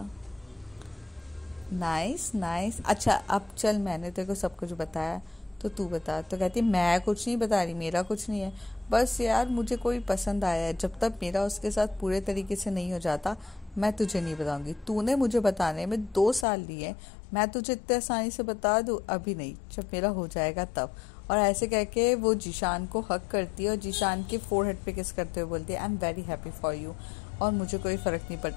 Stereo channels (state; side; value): drops out; right; at 16.4 s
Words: Nice nice. अच्छा अब चल, मैंने तेरे को सब कुछ बताया, तो तू बता। तो कहती, मैं कुछ नहीं बता रही, मेरा कुछ नहीं है। बस यार मुझे कोई पसंद आया है, जब तक मेरा उसके साथ पूरे तरीके से नहीं हो जाता मैं तुझे नहीं बताऊंगी। तूने मुझे बताने में 2 साल लिए, मैं तुझे इतने आसानी से बता दूँ? अभी नहीं, जब मेरा हो जाएगा तब। और ऐसे कह के वो जीशान को हक करती है और जीशान के फोरहेड पे किस करते हुए बोलती है, I am very happy for you, और मुझे कोई फ़र्क नहीं